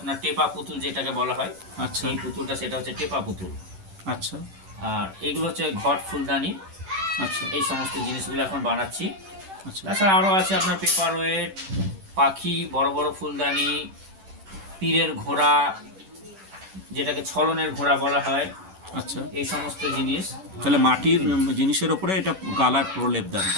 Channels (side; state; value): left; late; 10 ms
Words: টেপা পুতুল যেটাকে বলা হয়, আচ্ছা, এই পুতুলটা সেটা হচ্ছে টেপা পুতুল। আচ্ছা, আর এইগুলো হচ্ছে ঘট ফুলদানি। আচ্ছা, এই সমস্ত জিনিসগুলো এখন বানাচ্ছি। আচ্ছা, তাছাড়া আরও আছে আপনার পেপার ওয়েট, পাখি, বড় বড় ফুলদানি, পীরের ঘোড়া, যেটাকে ছলনের ঘোড়া বলা হয়, আচ্ছা। এই সমস্ত জিনিস। তাহলে মাটির জিনিসের ওপরে এটা গালার প্রলেপ দেন,